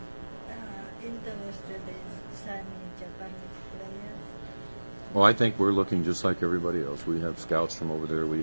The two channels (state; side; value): inverted; both; correlation -1.00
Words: interested in signing Japanese players? Well, I think we're looking just like everybody else. We have scouts from over there. We